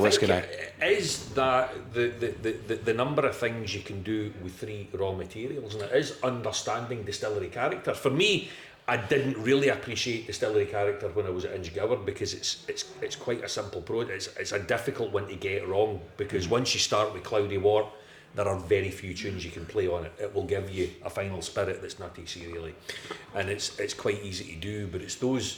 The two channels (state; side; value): identical; both; correlation 1.00